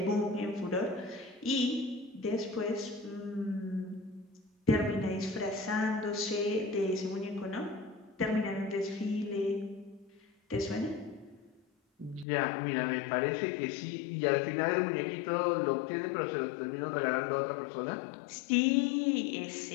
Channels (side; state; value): right; drops out; at 12.2 s